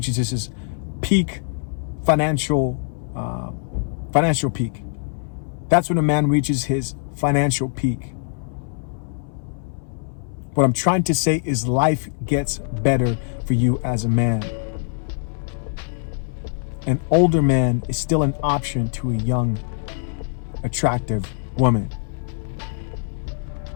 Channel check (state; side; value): silent; right; 63 dB below the other